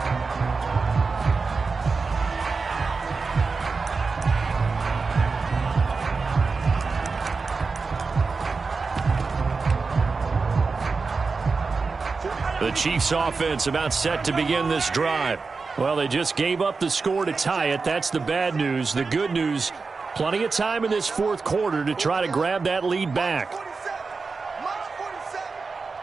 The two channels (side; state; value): left; quieter; 4.4 dB